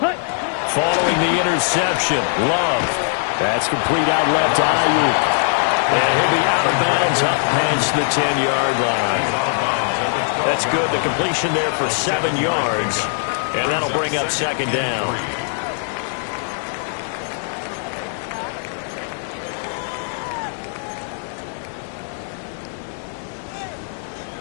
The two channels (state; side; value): silent; right; 63 dB below the other